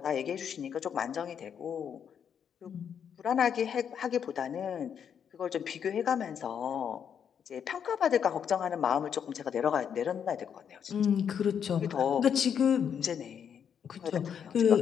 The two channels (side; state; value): right; quieter; 7.9 dB